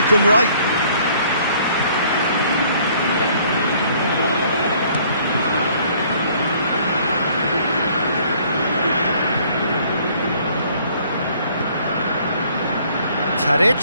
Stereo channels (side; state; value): both; inverted; correlation -0.60